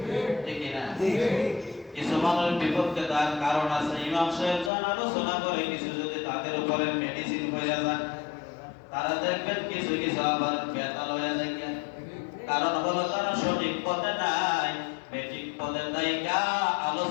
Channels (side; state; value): right; drops out; at 4.7 s